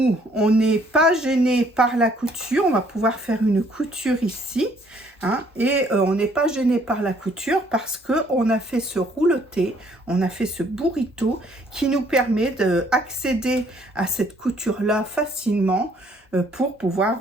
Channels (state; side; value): normal; both; correlation 0.63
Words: n'est pas gêné par la couture, on va pouvoir faire une couture ici hein, et on n'est pas gêné par la couture parce qu'on a fait ce rouleté, on a fait ce burrito qui nous permet d'accéder à cette couture-là facilement pour pouvoir